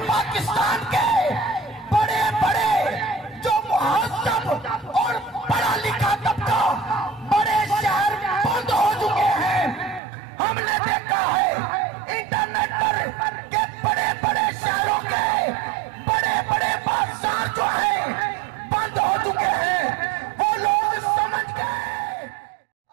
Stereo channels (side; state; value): left; drops out; at 10.0 s